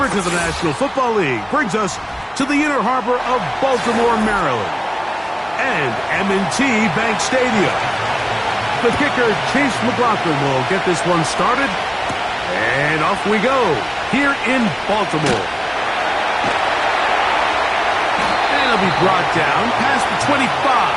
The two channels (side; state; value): both; identical; correlation 1.00